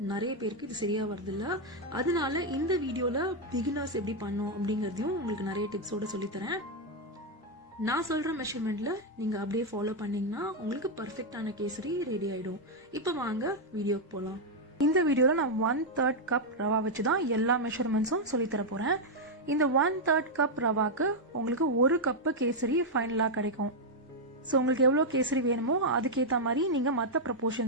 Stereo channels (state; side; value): normal; both; correlation -0.01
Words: நிறைய பேருக்கு இது சரியா வருது இல்ல. அதனால இந்த வீடியோல பிகினர்ஸ் எப்படி பண்ணோம் அப்படிங்கறதையும் உங்களுக்கு நிறைய டிப்ஸோட சொல்லித்தரேன். நான் சொல்ற மெஷர்மெண்ட்ல நீங்க அப்படியே ஃபாலோ பண்ணீங்கன்னா உங்களுக்கு பர்ஃபெக்டான கேசரி ரெடி ஆயிடும். இப்ப வாங்க வீடியோக்கு போலாம். இந்த வீடியோல நான் 1/3 கப் ரவா வச்சுதான் எல்லா மெஷர்மெண்ட்ஸும் சொல்லித்தர போறேன். இந்த 1/3 கப் ரவாக்கு உங்களுக்கு 1 கப் கேசரி ஃபைனலா கிடைக்கும். ஸோ உங்களுக்கு எவ்வளோ கேசரி வேணுமோ அதுக்கேற்ற மாதிரி நீங்கள் மற்ற